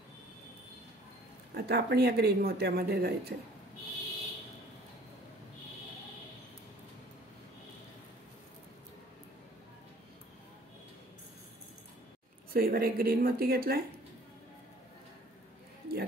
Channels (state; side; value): normal; both; correlation 0.53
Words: आता आपण या ग्रीन मोत्यामध्ये जायचं आहे. सुईवर एक ग्रीन मोती घेतलाय. या